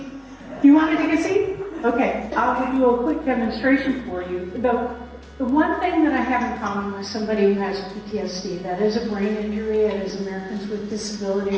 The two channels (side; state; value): both; identical; correlation 1.00